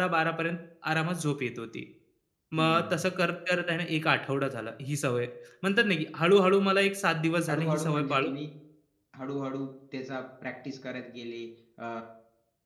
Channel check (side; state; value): both; identical; correlation 1.00